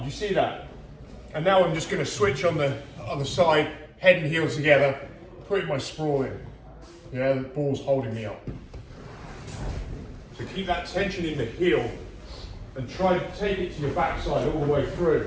you see that? And now I'm just going to switch on the other side, head and heel together, putting my sprawl in. Yeah, the ball's holding me up. So keep that tension in the heel and try to take it to your backside all the way through,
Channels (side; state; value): both; identical; correlation 1.00